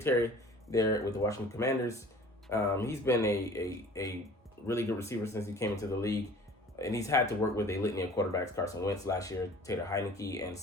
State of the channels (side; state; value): both; normal; correlation 0.47